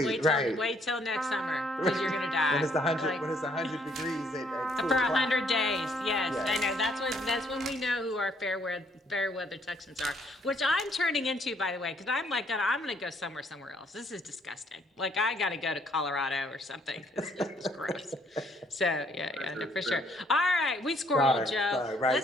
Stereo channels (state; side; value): normal; both; correlation 0.66